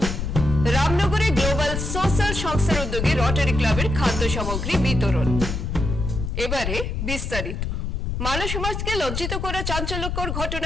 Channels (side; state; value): left; noise; rumble, 3 dB below the sound